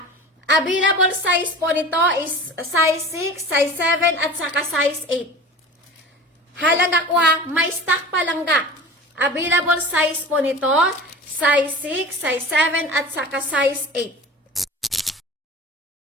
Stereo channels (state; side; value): normal; both; correlation 0.36